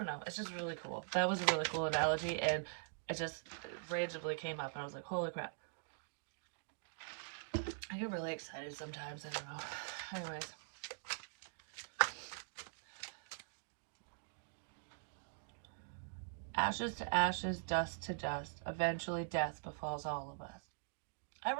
know. It's just really cool. That was a really cool analogy, and it just randomly came up, and I was like, holy crap. I get really excited sometimes. I don't know. Anyways. Ashes to ashes, dust to dust. Eventually death befalls all of us. I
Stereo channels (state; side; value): silent; left; digital silence